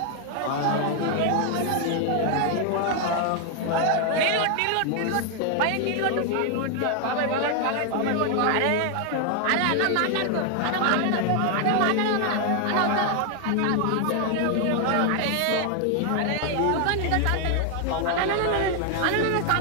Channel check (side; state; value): both; different; correlation 0.00